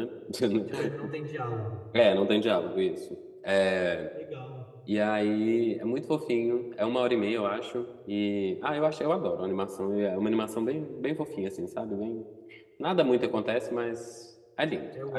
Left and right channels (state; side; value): identical; both; correlation 1.00